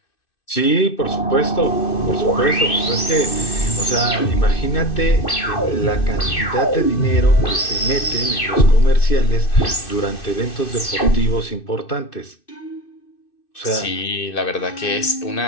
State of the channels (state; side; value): late; right; 2.6 ms